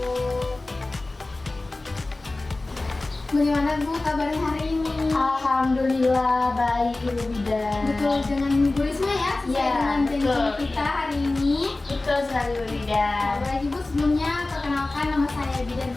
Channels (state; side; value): quieter; right; 3.0 dB